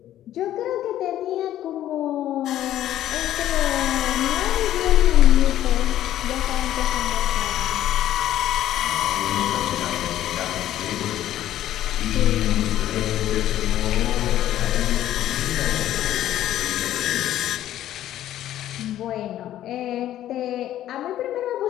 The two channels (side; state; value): right; quieter; 12.6 dB